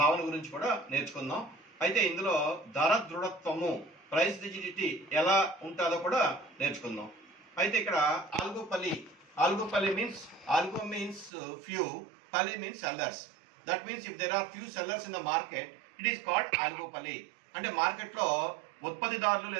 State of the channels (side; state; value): left; drops out; at 11.3 s